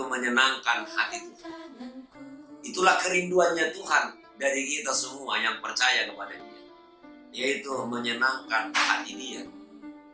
menyenangkan hati Tuhan. Itulah kerinduannya Tuhan dari kita semua yang percaya kepada Dia, yaitu menyenangkan hati Dia.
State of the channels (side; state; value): both; identical; correlation 1.00